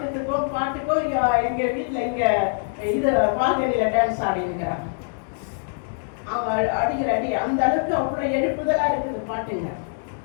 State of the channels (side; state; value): right; silent; digital silence